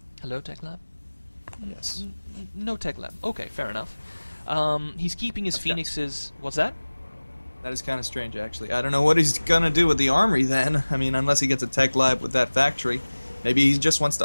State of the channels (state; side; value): inverted; both; correlation -1.00